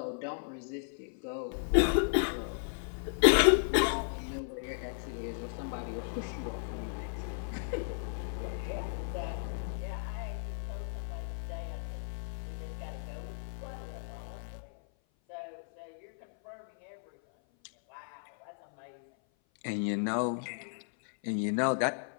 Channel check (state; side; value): silent; right; 55 dB below the other